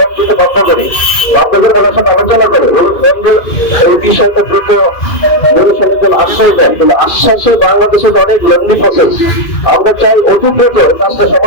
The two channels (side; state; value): right; late; 2.4 ms